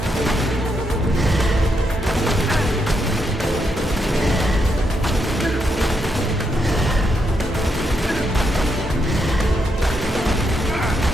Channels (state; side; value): normal; both; correlation 0.80